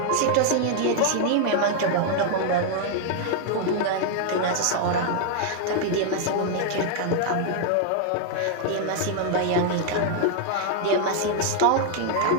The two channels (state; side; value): different; both; correlation 0.00